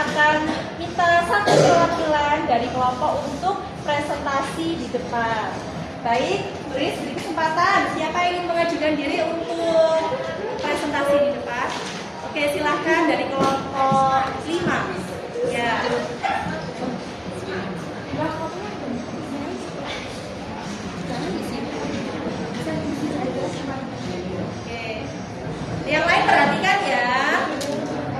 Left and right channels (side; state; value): both; identical; correlation 1.00